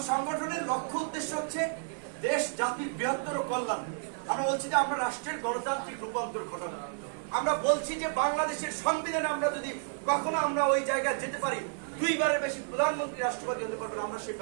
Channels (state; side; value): silent; left; digital silence